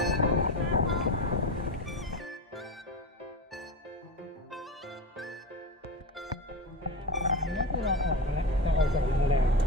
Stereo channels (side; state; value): both; normal; correlation 0.24